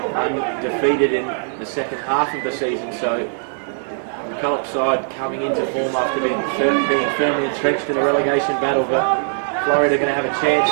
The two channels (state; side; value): silent; left; digital silence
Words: in the second half of the season, so the McCulloch side coming into form after being firmly entrenched in a relegation battle, but Florida are going to have a chance